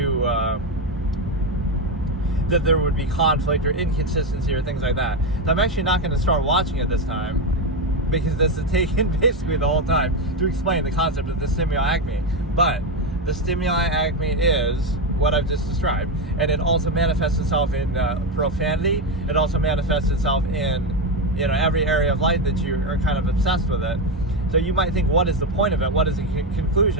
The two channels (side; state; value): both; normal; correlation 0.10